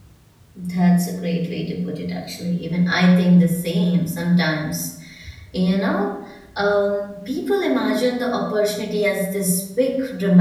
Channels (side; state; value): both; identical; correlation 1.00